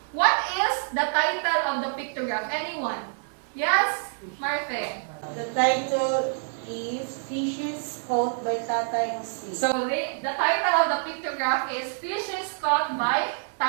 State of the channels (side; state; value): left; silent; digital silence